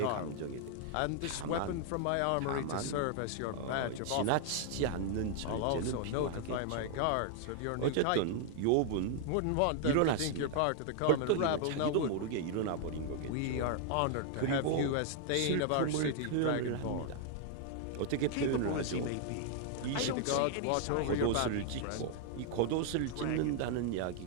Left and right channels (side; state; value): both; different; correlation 0.00